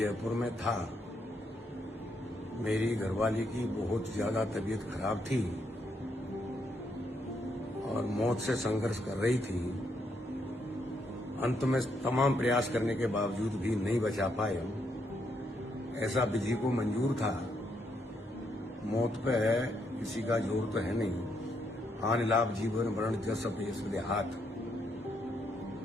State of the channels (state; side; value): normal; both; correlation 0.76